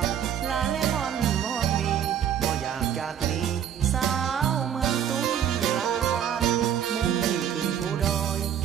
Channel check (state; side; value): quieter; left; 9.4 dB